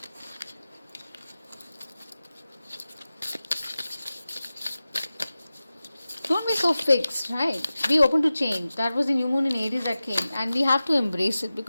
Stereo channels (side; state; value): both; inverted; correlation -0.96